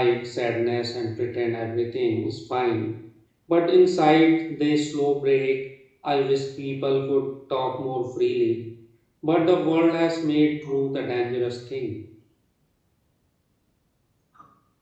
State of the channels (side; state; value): both; identical; correlation 1.00